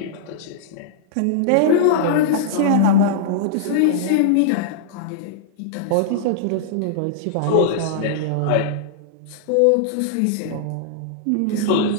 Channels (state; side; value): different; both; correlation -0.02